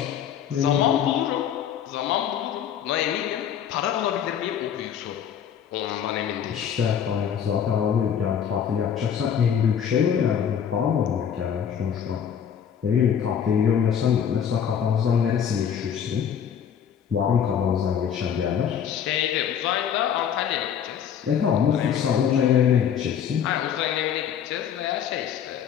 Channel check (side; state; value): right; quieter; 8.5 dB